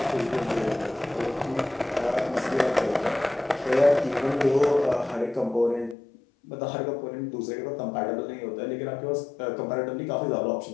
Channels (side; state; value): right; drops out; at 6.0 s